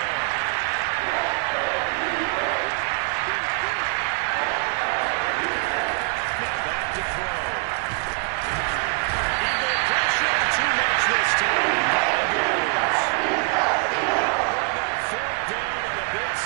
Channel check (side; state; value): left; quieter; 35.2 dB